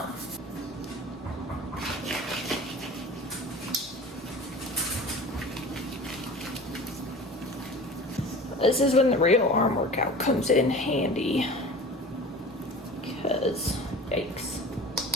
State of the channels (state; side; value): normal; both; correlation 0.38